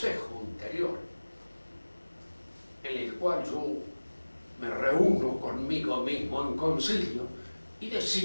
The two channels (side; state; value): both; inverted; correlation -1.00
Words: interior, en el cual yo me reúno conmigo mismo en concilio y